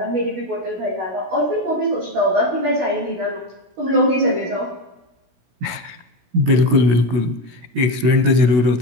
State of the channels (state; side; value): late; left; 17 ms